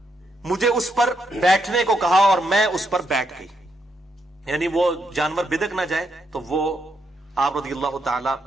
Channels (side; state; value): both; normal; correlation 0.79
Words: مجھے اس پر بیٹھنے کو کہا اور میں اس پر بیٹھ گئی، یعنی وہ جانور بدک نہ جائے، تو وہ آپ رضی اللہ تعالی